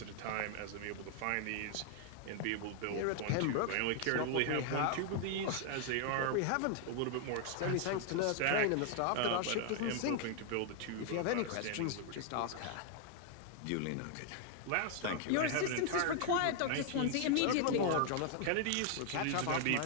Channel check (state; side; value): different; both; correlation 0.00